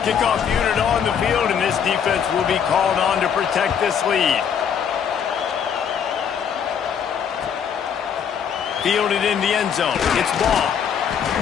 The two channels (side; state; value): right; quieter; 7.8 dB